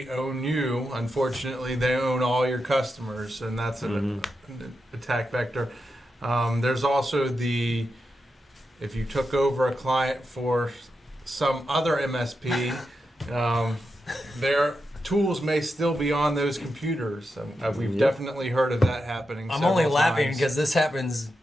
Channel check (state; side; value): normal; both; correlation 0.87